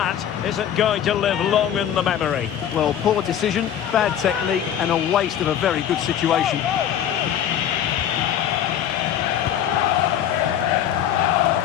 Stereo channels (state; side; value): quieter; right; 10.0 dB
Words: isn't going to live long in the memory. Well, poor decision, bad technique, and a waste of a very good situation.